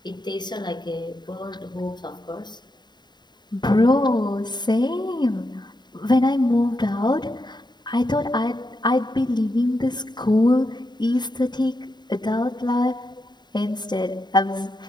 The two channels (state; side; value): late; right; 0.21 ms